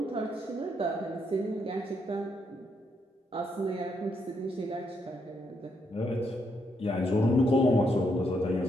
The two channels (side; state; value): both; normal; correlation 0.77